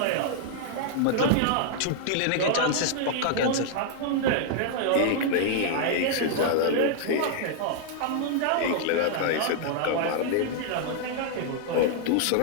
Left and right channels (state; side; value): different; both; correlation -0.01